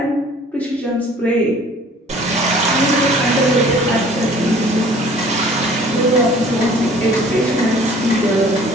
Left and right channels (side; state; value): both; normal; correlation 0.51